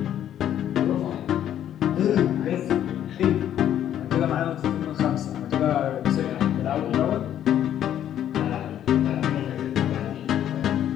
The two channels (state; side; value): quieter; right; 10.8 dB